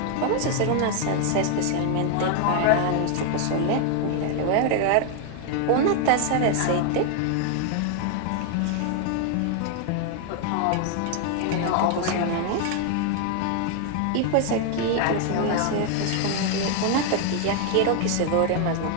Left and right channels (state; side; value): different; both; correlation 0.00